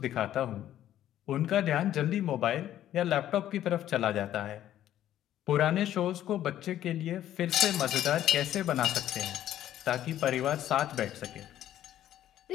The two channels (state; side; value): quieter; right; 12.0 dB